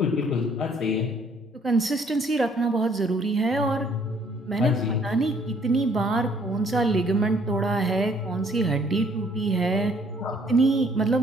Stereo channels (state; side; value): normal; both; correlation 0.63